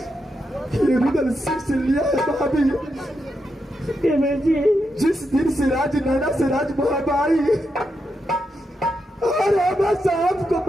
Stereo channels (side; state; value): both; normal; correlation 0.84